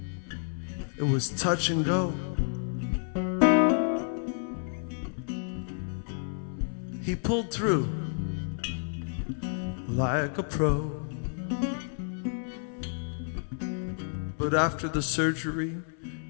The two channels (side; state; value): right; silent; 58 dB below the other